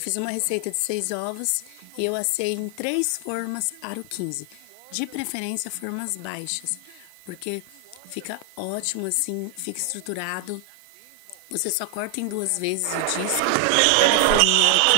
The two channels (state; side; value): different; both; correlation 0.00